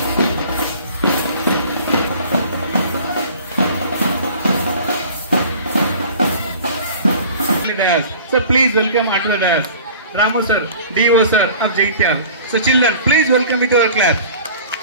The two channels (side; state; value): both; inverted; correlation -0.45